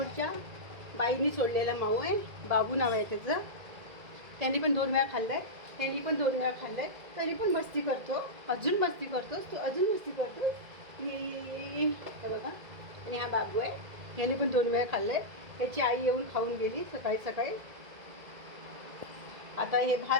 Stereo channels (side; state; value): left; late; 2.0 ms